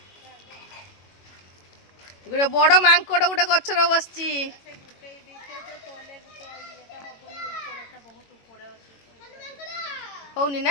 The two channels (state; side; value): late; right; 21 ms